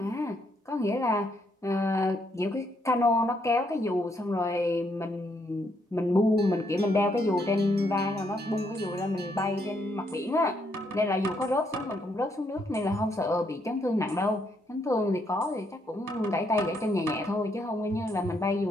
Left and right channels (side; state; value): both; normal; correlation 0.74